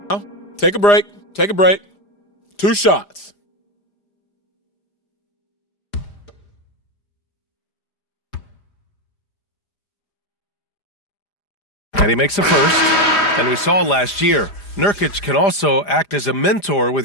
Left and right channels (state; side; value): late; right; 5.0 ms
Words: Take a break. Take a break. 2 shots. And he makes a first. And we saw last year, Nurkic can also act as a mentor with